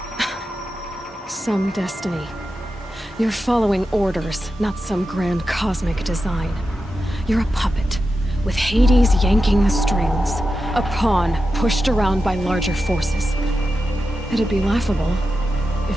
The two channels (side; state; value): both; normal; correlation 0.90